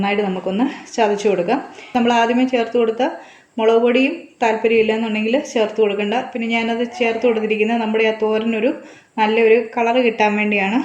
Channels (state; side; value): identical; both; correlation 1.00